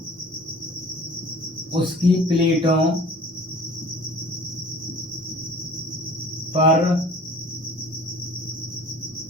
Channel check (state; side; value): normal; both; correlation 0.46